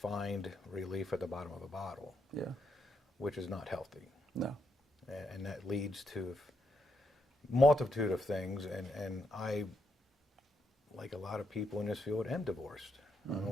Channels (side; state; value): both; normal; correlation 0.79